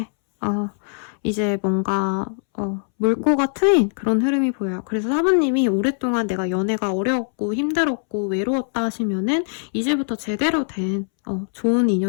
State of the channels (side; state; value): right; silent; 64 dB below the other